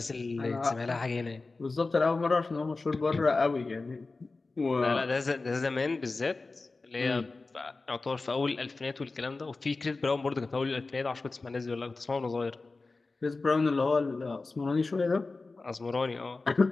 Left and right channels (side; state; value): right; quieter; 3.7 dB